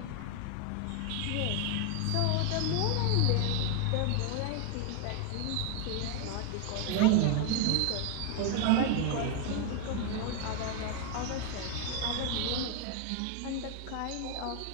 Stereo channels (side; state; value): both; different; correlation 0.01